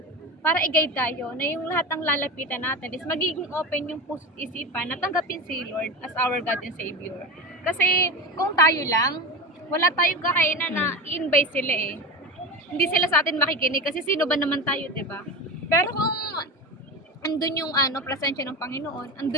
para i-guide tayo na yung lahat ng lalapitan natin is magiging open yung puso't isipan na tanggapin si Lord as our God and Savior. Kasi kung tayo lang, wala tayong kakainan na i-invite sila eh. Hindi sila sa atin makikinig kasi sino ba naman tayo, 'di ba? Pero kung andun yung presensya ng Panginoon,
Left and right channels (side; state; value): both; normal; correlation 0.24